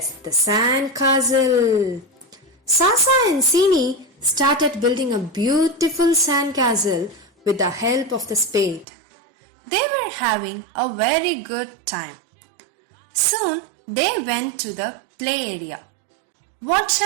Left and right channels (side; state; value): left; drops out; at 8.8 s